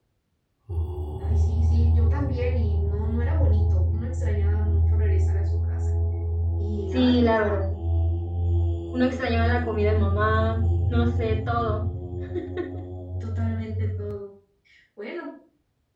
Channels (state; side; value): identical; both; correlation 1.00